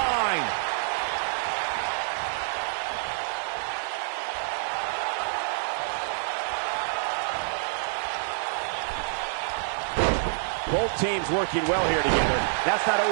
Both teams working well here together. That's not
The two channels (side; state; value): left; silent; digital silence